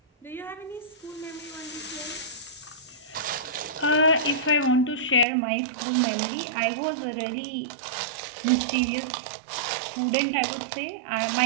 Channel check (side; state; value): left; drops out; at 5.2 s